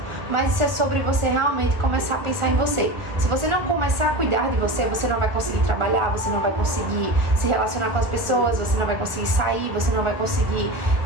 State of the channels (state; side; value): late; left; 1.3 ms